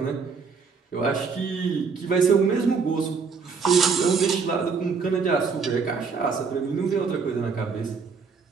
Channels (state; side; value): quieter; left; 5.3 dB